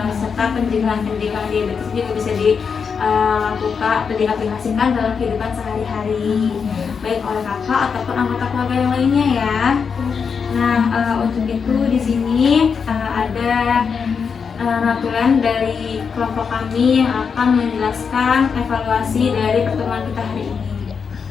serta pencegahan-pencegahan diabetes juga bisa dilakukan atau diaplikasikan dalam kehidupan sehari-hari, baik oleh kakak ataupun anggota keluarga yang lainnya ya. Nah, untuk itu di sini ada ratulan dari kelompok kami yang akan menjelaskan evaluasi dari pertemuan kita hari ini.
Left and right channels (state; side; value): quieter; right; 6.0 dB